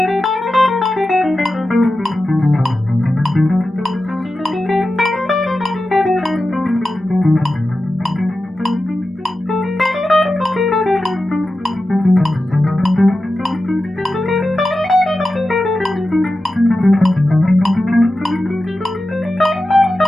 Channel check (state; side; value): normal; both; correlation 0.92